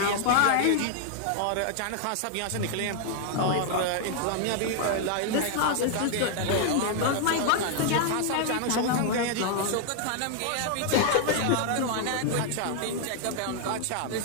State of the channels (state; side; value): different; both; correlation 0.00